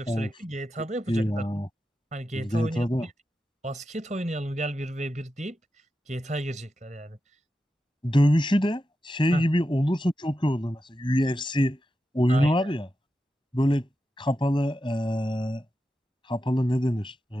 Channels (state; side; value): normal; both; correlation 0.90